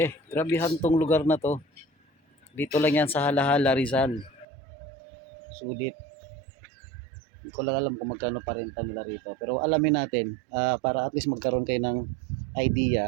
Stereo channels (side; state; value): left; drops out; at 4.5 s